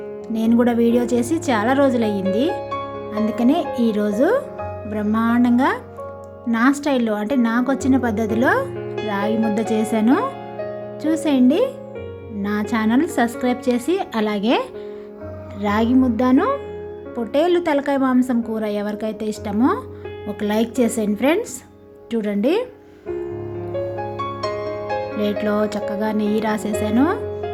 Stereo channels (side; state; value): both; identical; correlation 1.00